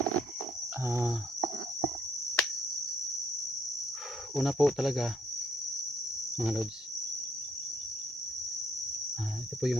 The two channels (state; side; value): normal; both; correlation 0.68